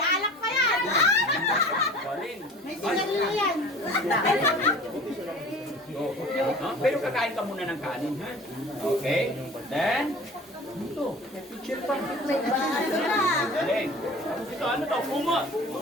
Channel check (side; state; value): both; normal; correlation 0.42